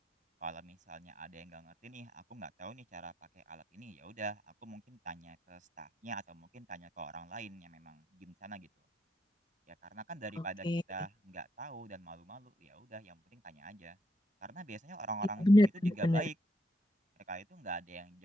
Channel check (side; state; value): both; normal; correlation 0.79